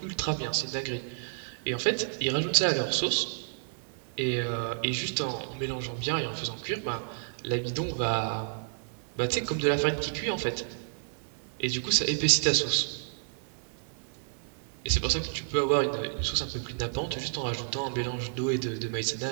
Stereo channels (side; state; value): left; silent; 57 dB below the other